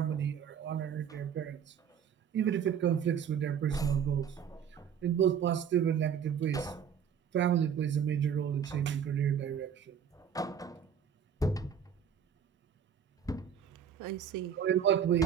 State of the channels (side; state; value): left; quieter; 8.0 dB